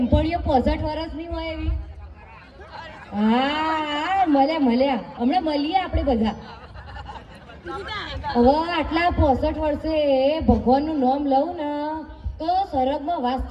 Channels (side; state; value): both; identical; correlation 1.00